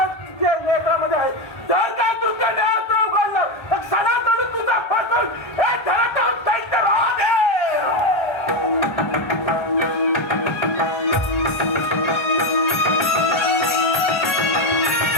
लेखामध्ये आहे. जर काय तुझ्या नियंत्रण उघडलं तर क्षणात तुझा फसून हे धरत दैत्यराज आहे.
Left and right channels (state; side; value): late; right; 1.3 ms